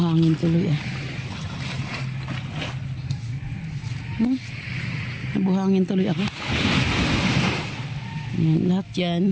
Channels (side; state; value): both; identical; correlation 1.00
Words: tuloy ah. Buhangin tuloy ako. Yan. Lahat